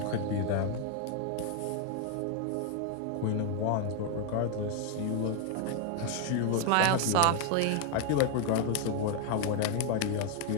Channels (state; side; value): different; both; correlation 0.01